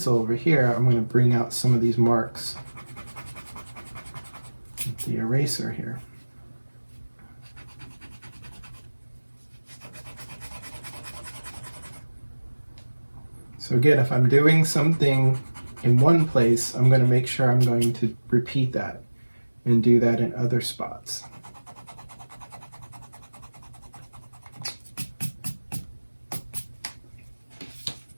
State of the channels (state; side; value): inverted; both; correlation -1.00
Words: over here. I'm going to bring out some of these marks with the eraser here. So again, if I'm doing something in one place, I'm going to make sure I'm going to repeat that and do that in other spots.